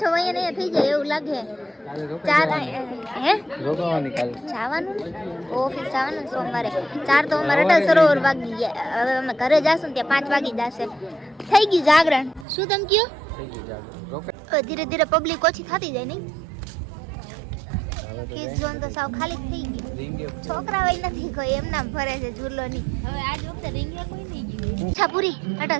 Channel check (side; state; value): left; drops out; at 12.5 s